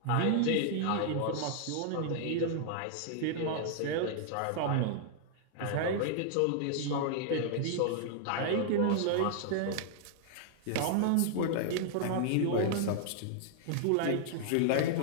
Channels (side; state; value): both; different; correlation -0.01